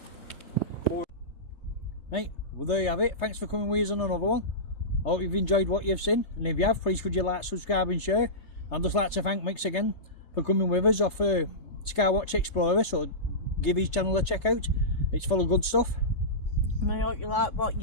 Right, well there you have it. Thanks for coming with us on another one. I hope you've enjoyed what you've seen, and if you have, please could you like, subscribe and share. I'd just like to thank Mix again for coming with us off Skywatch Explorer, so give his channel a check out. It's full of good stuff. And I hope you like what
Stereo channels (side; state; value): right; late; 3.3 ms